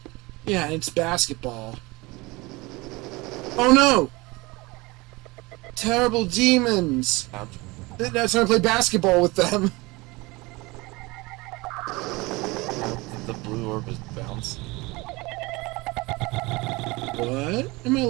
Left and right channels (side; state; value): left; quieter; 23.3 dB